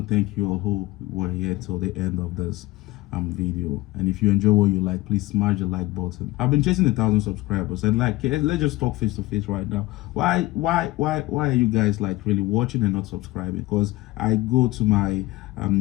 to thank you all who were here till the end of this video. And if you enjoy what you like, please smash the like button. I've been chasing 1,000 subscribers, and like, let's just talk face to face right now. Why are you guys like really watching and not subscribing? Because I go to my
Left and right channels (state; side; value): quieter; right; 19.5 dB